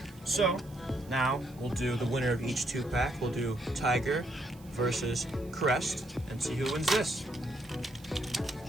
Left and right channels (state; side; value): noise; right; hiss, 25 dB below the sound